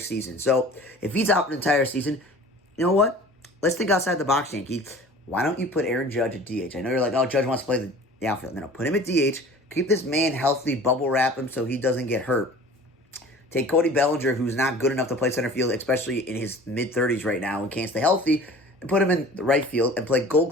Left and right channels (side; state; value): both; normal; correlation 0.44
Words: So, if he's out for the entire season, you know what? Let's think outside the box, Yankees. Why don't you put Aaron Judge at DH? I know you're like, oh, Judge wants to play the outfield. No, put him at DH. Keep this man healthy, bubble wrap him so he doesn't get hurt. Take Cody Bellinger, who's not good enough to play center field, especially in his mid-30s right now and can't stay healthy, and put him in the right field and play Gold